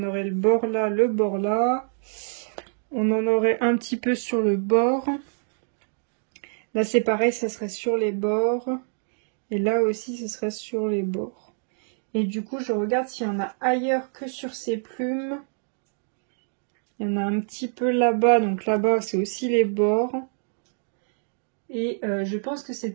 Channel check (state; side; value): silent; left; digital silence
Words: aurait le bord là, le bord là. On en aurait un petit peu sur le bord. Là c'est pareil, ça serait sur les bords. Et là aussi, ce serait sur les bords. Et du coup, je regarde s'il y en a ailleurs que sur ces plumes. Il y en a un petit peu là-bas. Donc là-bas, c'est aussi les bords. Et je pense que c'est